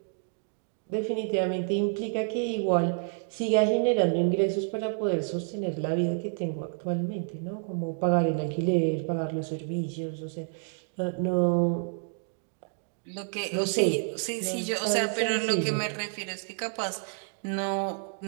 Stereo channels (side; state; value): left; silent; 59 dB below the other